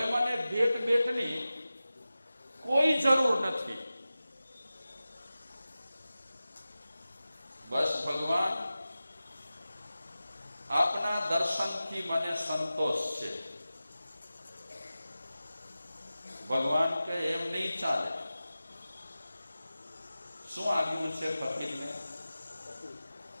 મને ભેટની કોઈ જરૂર નથી. બસ ભગવાન આપના દર્શનથી મને સંતોષ છે. ભગવાન કે એમ નહીં ચાલે. શું આવ્યું છે ફકીરને?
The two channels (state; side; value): inverted; both; correlation -0.95